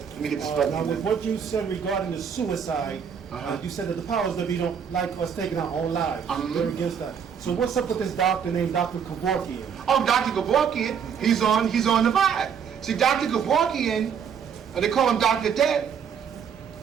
Let me get this now, with what you said regarding the suicide, you said that the powers that be don't like us taking our own lives. They're against that. So what's up with this doctor named Dr. Kevorkian? Oh, Dr. Kevorkian, he's on the vibe. See, Dr. Kevorkian, they call him Dr. Dead.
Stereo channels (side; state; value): left; quieter; 7.4 dB